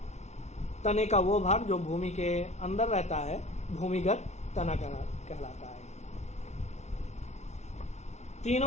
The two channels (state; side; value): late; right; 0.32 ms